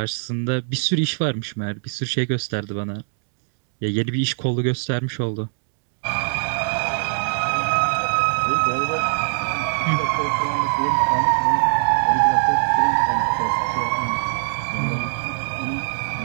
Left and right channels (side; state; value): left; silent; digital silence